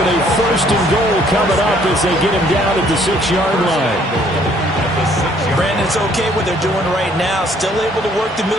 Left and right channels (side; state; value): both; normal; correlation 0.62